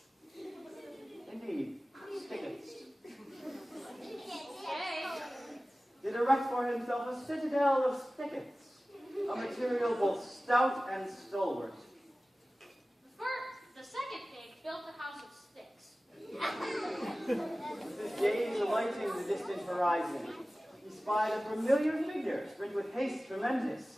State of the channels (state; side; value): normal; both; correlation 0.97